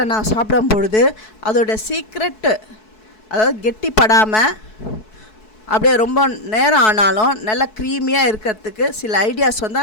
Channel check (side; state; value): right; late; 4.6 ms